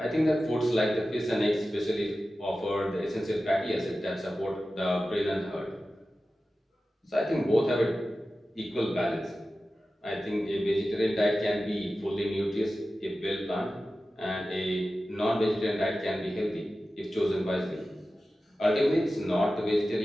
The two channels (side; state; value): both; normal; correlation 0.94